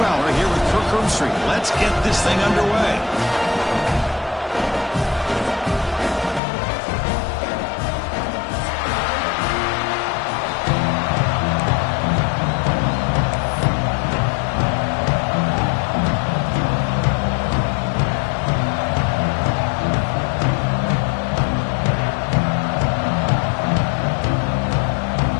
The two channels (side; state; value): right; drops out; at 6.4 s